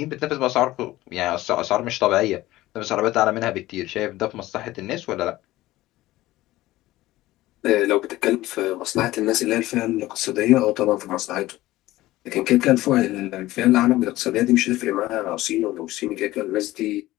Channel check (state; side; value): quieter; right; 16.9 dB